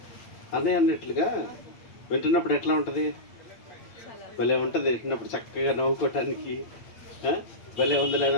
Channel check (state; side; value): late; right; 8.9 ms